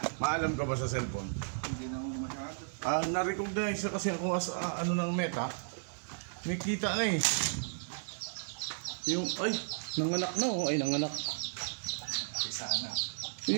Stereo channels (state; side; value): silent; left; digital silence